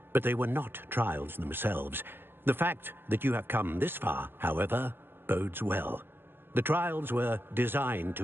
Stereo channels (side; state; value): left; late; 0.10 ms